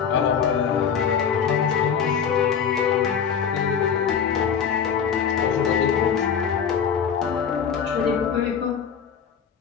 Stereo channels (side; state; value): right; quieter; 7.3 dB